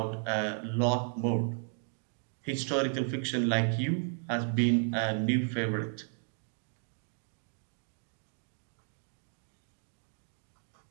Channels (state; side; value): silent; left; 55 dB below the other